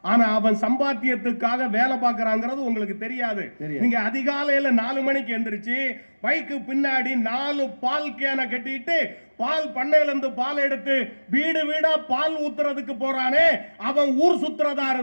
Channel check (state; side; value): inverted; both; correlation -1.00